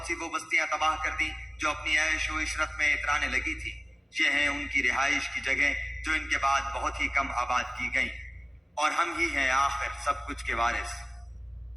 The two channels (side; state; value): both; normal; correlation 0.97